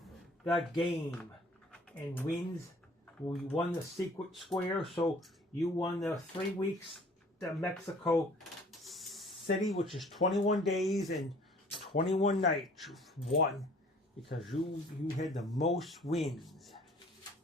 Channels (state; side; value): normal; both; correlation 0.52